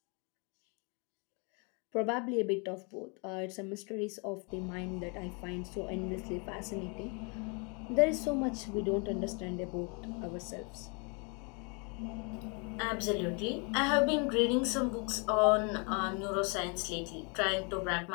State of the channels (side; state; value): right; quieter; 34.3 dB